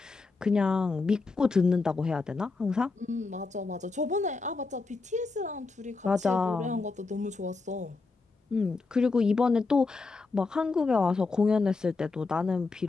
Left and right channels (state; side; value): quieter; right; 4.0 dB